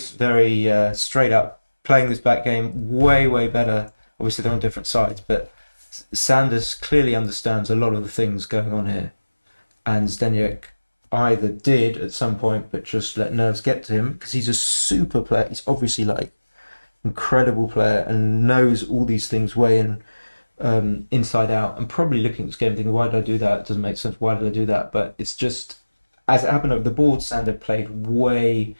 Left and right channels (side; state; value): both; inverted; correlation -1.00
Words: straight up. Playing this back game way better. Obviously, they're on different sides, but Sanders clearly understands a lot of the things going on here, and Zdeněk either did at some point, but just let nerves get to him because he's a super player. He's obviously like incredible player and knows all these things way in inside out, and probably looking at this game thinking, why did I do that? It doesn't make sense. Why did I do that? But it's just, as it happened over the board, Sander played way